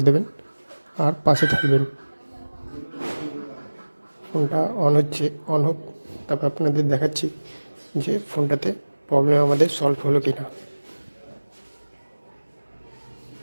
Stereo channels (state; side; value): inverted; both; correlation -1.00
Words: দেবেন আর পাশে থাকবেন। ফোনটা অন হচ্ছে, অন হোক, তারপর আপনাদের দেখাচ্ছি যে ফোনটাতে প্রবলেম আমাদের সলভ হলো কি না।